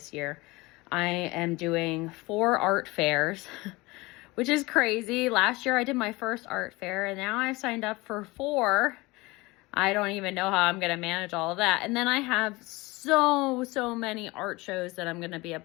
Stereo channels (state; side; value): quieter; right; 22.5 dB